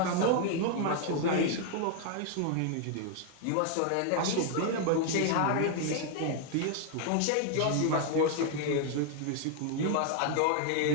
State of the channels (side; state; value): both; different; correlation 0.00